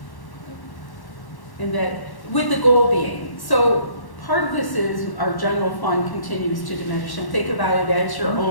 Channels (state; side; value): late; right; 1.1 ms